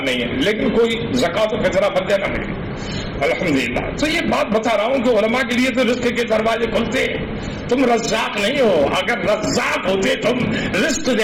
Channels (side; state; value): both; identical; correlation 1.00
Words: نہیں ہے. لیکن کوئی زکات و فطرہ بن جانا ملے الحمدللہ. تو یہ بات بتا رہا ہوں کہ علماء کے لیے تو رزق کے دروازے کھلتے. تم رزاق نہیں ہو, اگر رزاق ہوتے, تم رزق